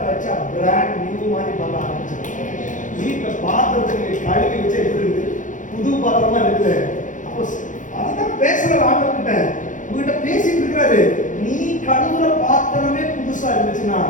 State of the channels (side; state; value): right; late; 0.37 ms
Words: வச்சா பிராண்ட் நியூ மாதிரி பண்ண ஆரம்பிச்சாங்க. வீட்டில் பாத்திரத்தை கழுவி வச்சா எப்படி இருக்குது, புது பாத்திரமா இருக்குது. அப்போ அதுதான் பேசுற ஆண்டவர்கிட்ட, உங்ககிட்ட பேசிட்டு இருக்கிறாரு. நீ கழுவுற பாத்திரமே புதுசா இருந்துச்சுன்னா